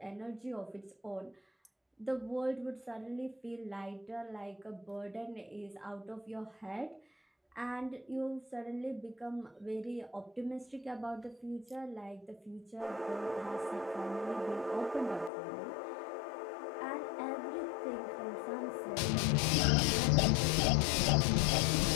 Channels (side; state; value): right; drops out; at 15.3 s